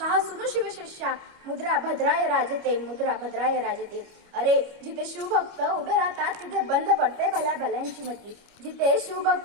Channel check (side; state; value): left; late; 25 ms